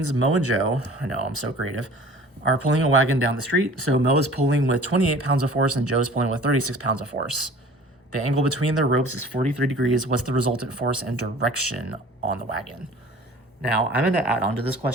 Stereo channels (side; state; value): both; normal; correlation 0.46